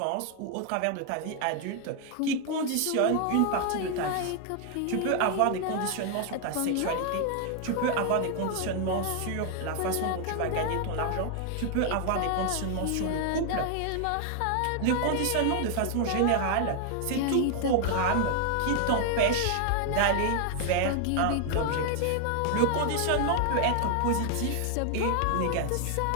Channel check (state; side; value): different; both; correlation 0.00